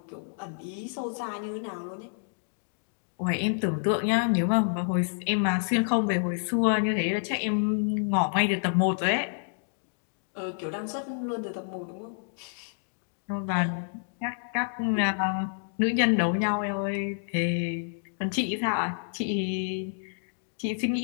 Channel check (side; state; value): right; silent; digital silence